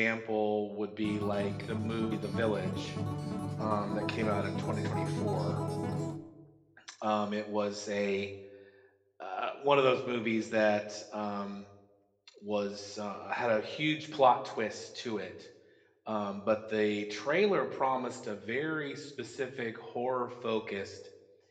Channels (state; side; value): identical; both; correlation 1.00